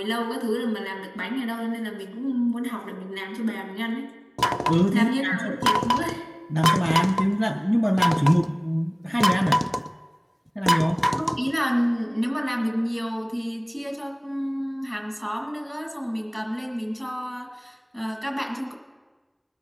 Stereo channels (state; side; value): identical; both; correlation 1.00